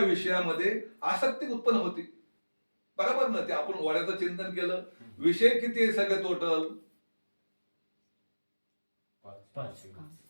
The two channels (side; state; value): both; inverted; correlation -1.00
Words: विषयामध्ये आसक्ती उत्पन्न होती. बरोबर ना. ते आपण वड्याचं चिंतन केलं, विषय किती आहे सगळे टोटल, 5